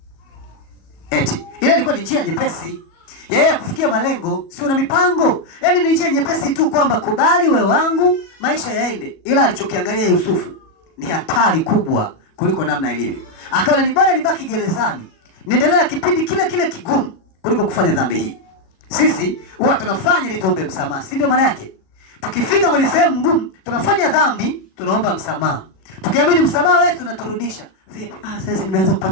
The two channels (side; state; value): right; late; 37 ms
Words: Eti ile ilikuwa ni njia nyepesi yeye kufikia malengo, si una mipango. Yaani ni njia nyepesi tu kwamba kubali wewe wangu, maisha yaende. Ila alichokiangalia Yusufu ni hatari kubwa kuliko namna ilivyo. Akaona ni bora nibaki gerezani, niendelee kipindi kile kile kigumu kuliko kufanya dhambi hii. Sisi huwa tunafanya ili tuombe msamaha, si ndio maana yake? Tukifika kwenye sehemu ngumu, tunafanya dhambi, tunaomba msamaha. Tukiamini msamaha wetu tunaturudisha. Vipi? Sasa nimeanza